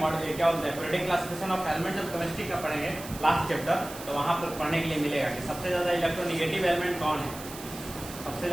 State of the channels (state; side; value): noise; right; hiss, 13 dB below the sound